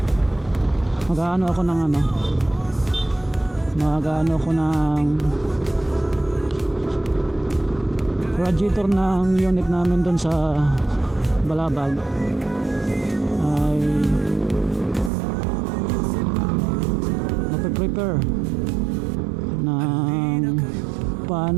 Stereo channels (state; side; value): drops out; left; at 15.1 s